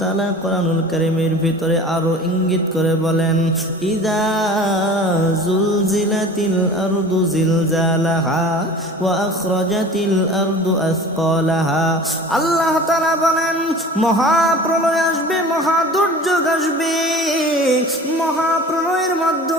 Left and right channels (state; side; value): normal; both; correlation 0.41